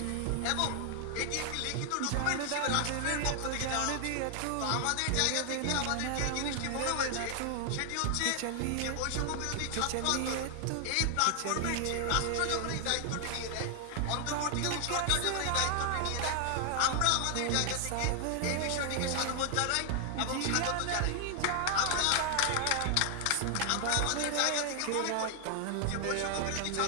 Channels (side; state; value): both; different; correlation 0.00